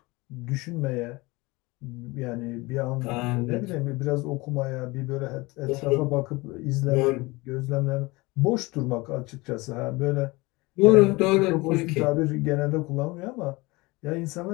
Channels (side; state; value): right; quieter; 23.2 dB